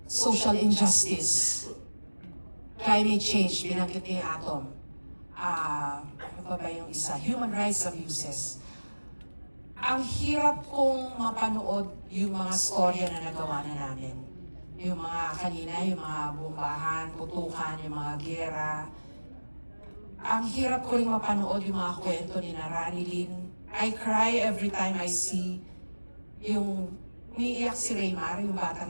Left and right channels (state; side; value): inverted; both; correlation -1.00